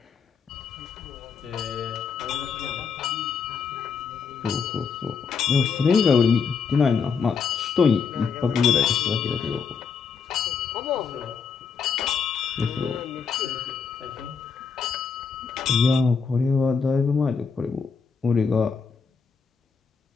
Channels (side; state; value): right; quieter; 5.8 dB